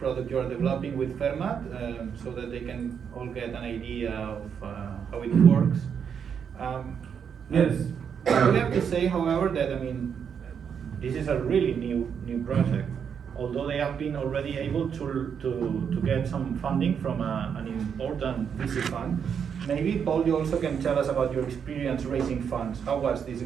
you are developing with Fermat, so that they can all get an idea of how it works. Yes. I have to say, however, that this is a really new project. Although they have been already able to get some funding from an important VC fund. Maybe, Paul, you also can tell us about your experience raising funds. How was this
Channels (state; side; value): quieter; left; 7.3 dB